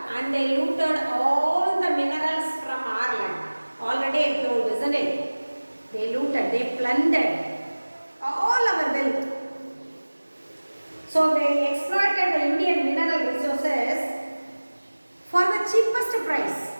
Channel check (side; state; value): both; inverted; correlation -1.00